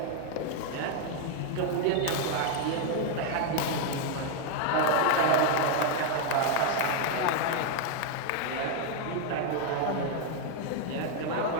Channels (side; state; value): both; different; correlation 0.01